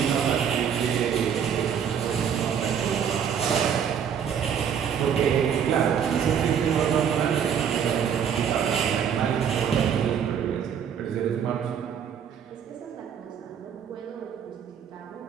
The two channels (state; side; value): quieter; left; 8.0 dB